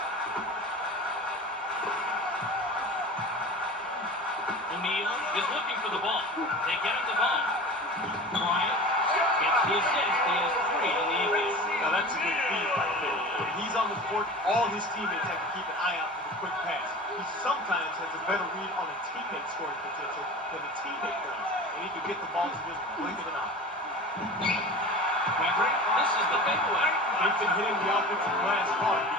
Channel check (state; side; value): normal; both; correlation 0.35